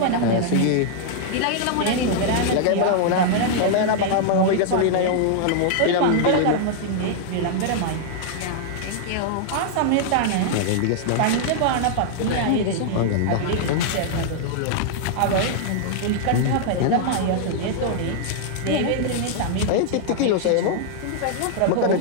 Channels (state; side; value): different; both; correlation -0.01